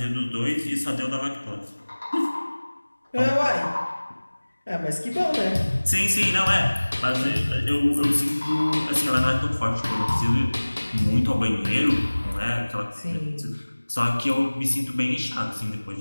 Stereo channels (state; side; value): inverted; both; correlation -1.00